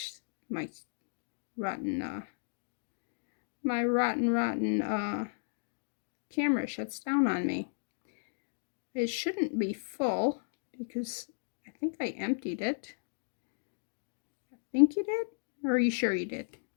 my rotten camera shuts down on me. It shouldn't be full because I think I emptied it. I think you did? Or are you sure you did?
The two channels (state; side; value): silent; right; digital silence